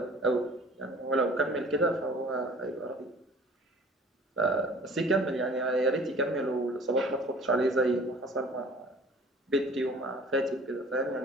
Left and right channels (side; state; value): both; normal; correlation 0.48